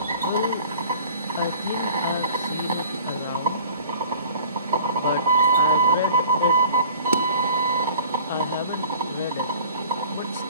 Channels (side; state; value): both; inverted; correlation -0.47